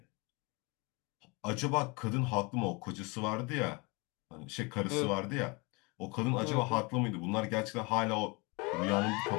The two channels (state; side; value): quieter; right; 28.2 dB